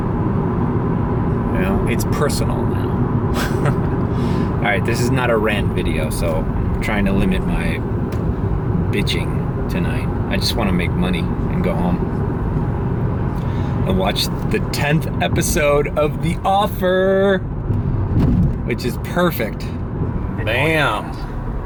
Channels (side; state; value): both; identical; correlation 1.00